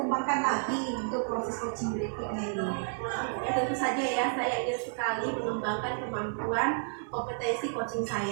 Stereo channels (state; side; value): silent; left; 56 dB below the other